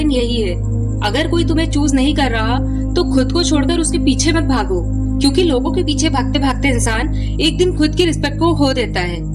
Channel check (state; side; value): identical; both; correlation 1.00